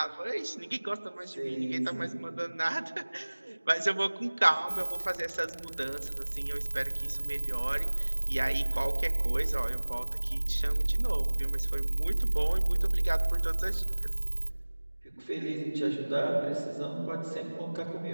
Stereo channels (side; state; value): both; inverted; correlation -1.00